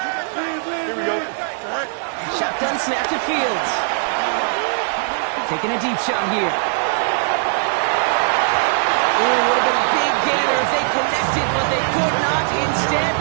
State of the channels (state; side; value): silent; left; 58 dB below the other